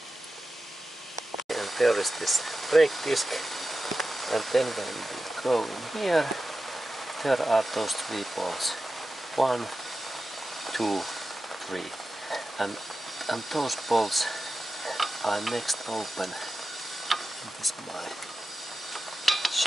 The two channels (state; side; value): normal; both; correlation 0.93